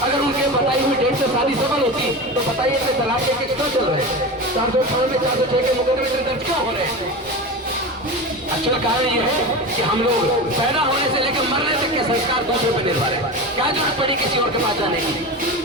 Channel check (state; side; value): normal; both; correlation 0.26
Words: अगर उनके बताई हुई डेट से शादी सफल होती तो बताइए कि तलाक के केस क्यों चल रहे हैं? 498 406 के मुकदमे दर्ज क्यों हो रहे हैं? अच्छा कारण ये है कि हम लोग पैदा होने से लेकर मरने तक के संस्कार दूसरे पर निर्भर है। क्या जरूरत पड़ी किसी और के पास जाने की?